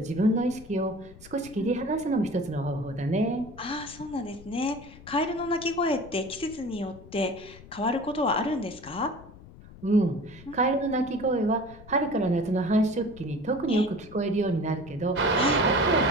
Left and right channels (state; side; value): noise; left; rumble, 19 dB below the sound